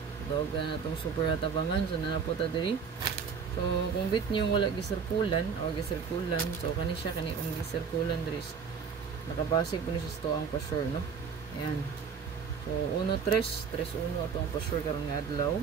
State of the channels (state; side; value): quieter; left; 6.2 dB